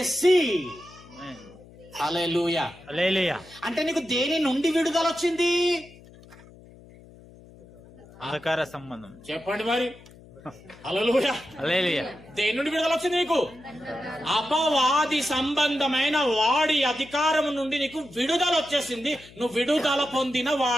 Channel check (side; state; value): left; noise; hum, 22 dB below the sound